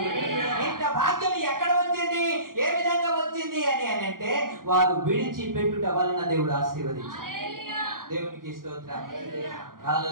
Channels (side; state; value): left; late; 0.91 ms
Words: ఇంత భాగ్యం ఎక్కడ వచ్చింది, ఏ విధంగా వచ్చింది అని అంటే వారు విడిచిపెట్టుట వలన దేవుడు ఆశీర్వదించాడు. దేవునికి స్తోత్రం.